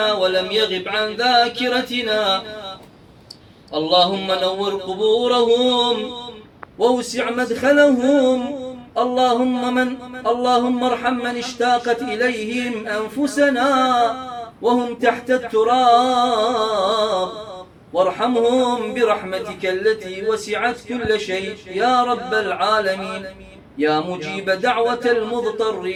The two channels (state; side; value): identical; both; correlation 1.00